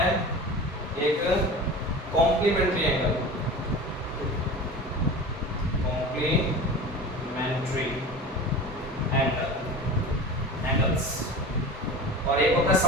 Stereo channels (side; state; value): both; normal; correlation 0.34